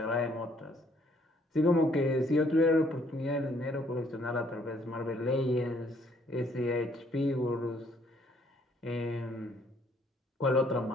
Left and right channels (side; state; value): both; normal; correlation 0.65